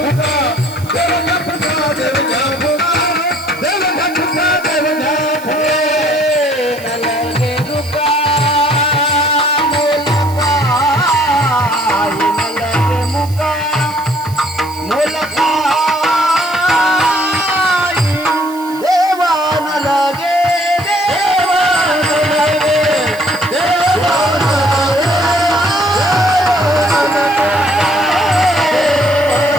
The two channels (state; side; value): noise; right; hiss, 19 dB below the sound